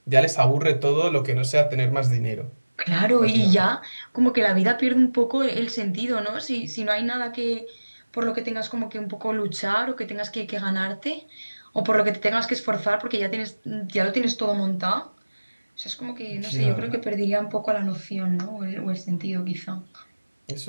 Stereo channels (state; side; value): inverted; both; correlation -1.00